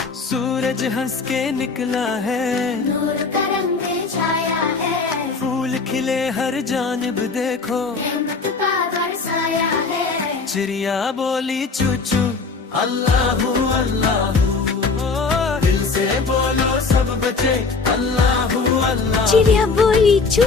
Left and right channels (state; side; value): quieter; right; 4.4 dB